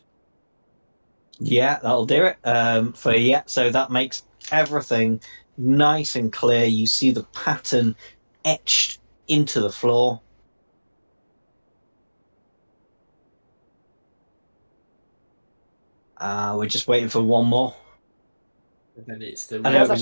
Yeah, that'll do it. So that makes everything nice and clear. You see the pattern etched into the floor. We're just waiting for one more. And then it's the I know it was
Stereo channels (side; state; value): both; inverted; correlation -1.00